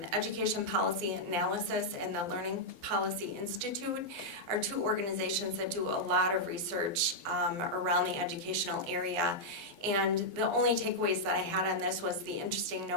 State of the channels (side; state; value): left; late; 12 ms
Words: Education Policy Analysis and the Learning Policy Institute are 2 organizations that do a lot of research around the educational area. And the only takeaways that I had on this was the interesting